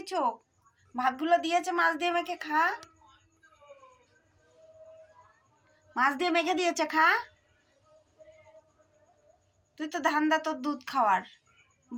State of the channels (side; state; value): both; identical; correlation 1.00